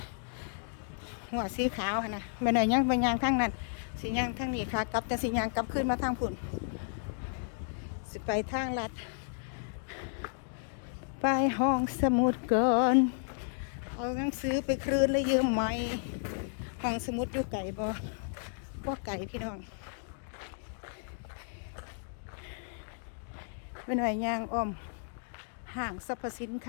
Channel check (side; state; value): right; silent; digital silence